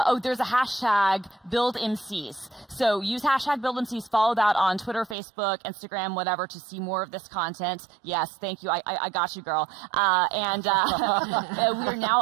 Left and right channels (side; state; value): left; drops out; at 5.2 s